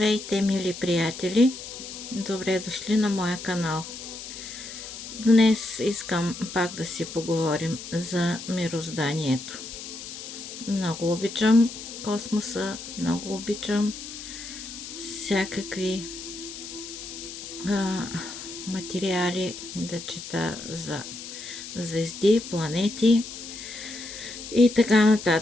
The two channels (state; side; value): noise; left; hiss, 11 dB below the sound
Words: мили приятели! Добре дошли на моя канал. Днес искам пак да си поговорим за мирозданието. Много обичам космоса, много обичам всякакви материали да чета за звезди, планети и така